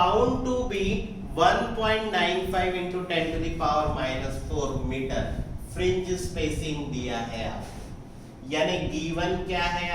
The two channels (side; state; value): both; identical; correlation 1.00